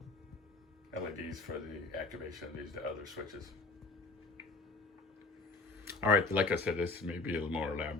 LEDs for the activation of these other switches. All right, like I said, this may be a little more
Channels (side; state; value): right; quieter; 3.8 dB